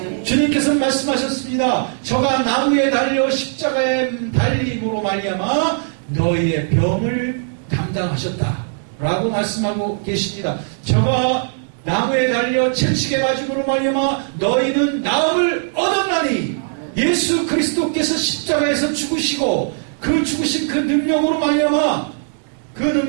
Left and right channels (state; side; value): silent; left; digital silence